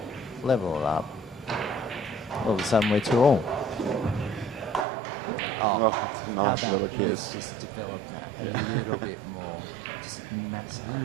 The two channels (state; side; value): drops out; left; at 4.9 s